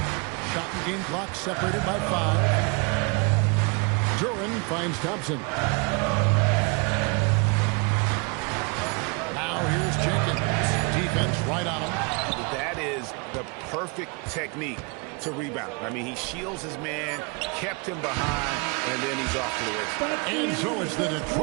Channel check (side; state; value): left; quieter; 32.0 dB